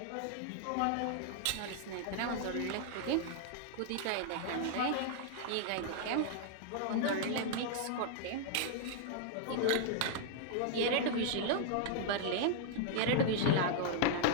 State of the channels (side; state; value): both; different; correlation -0.01